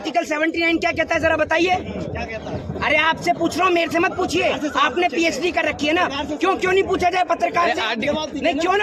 79 क्या कहता है जरा बताइए। अरे आपसे पूछ रहा हूँ, मेरे से मत पूछिए। आपने पीएचडी कर रखी है ना, क्यों नहीं पूछा जाए पत्रकार से? नहीं क्यों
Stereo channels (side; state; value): both; identical; correlation 1.00